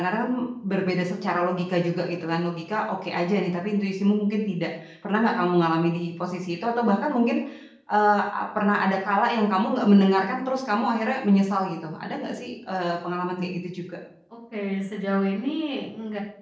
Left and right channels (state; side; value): identical; both; correlation 1.00